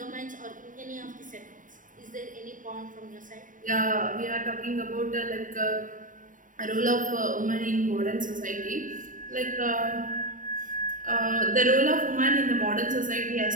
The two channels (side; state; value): left; late; 0.38 ms